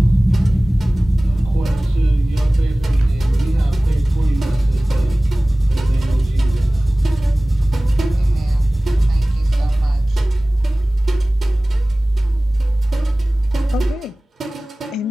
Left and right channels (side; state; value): both; normal; correlation 0.98